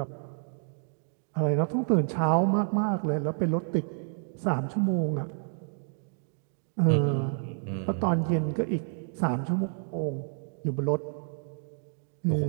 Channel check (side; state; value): left; silent; digital silence